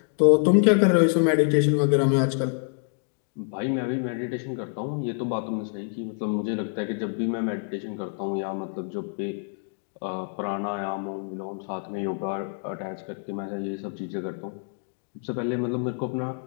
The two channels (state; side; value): silent; right; 60 dB below the other